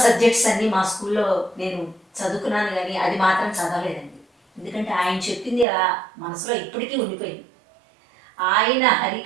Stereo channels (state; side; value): drops out; left; at 5.7 s